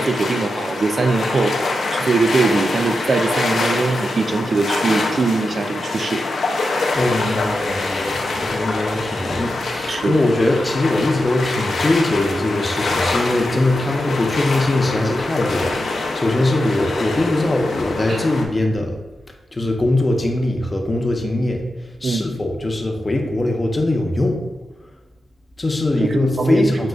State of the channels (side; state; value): both; normal; correlation 0.89